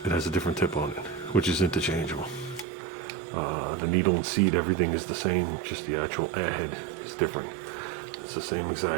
it has a different tip on it, which is interchangeable. The needle and seat, everything is the same, just the actual airhead is different. It's the same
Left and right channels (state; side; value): drops out; left; at 2.7 s